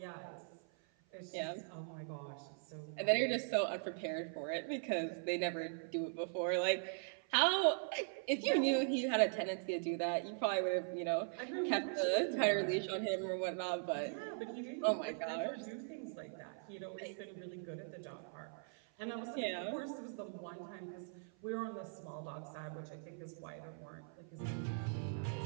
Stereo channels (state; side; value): silent; left; 51 dB below the other